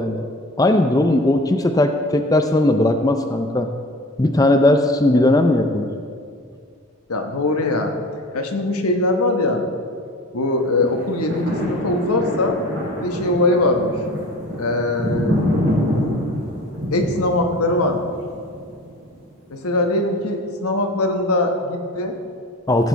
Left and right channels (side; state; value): both; normal; correlation 0.40